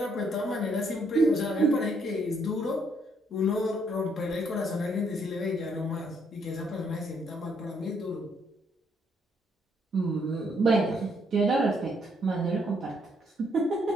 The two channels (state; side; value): normal; both; correlation 0.70